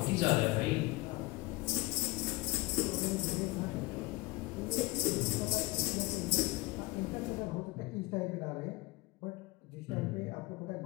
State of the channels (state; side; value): quieter; right; 22.2 dB